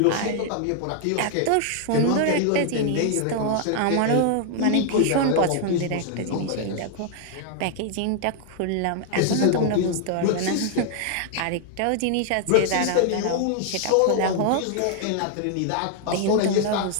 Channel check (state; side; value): different; both; correlation 0.00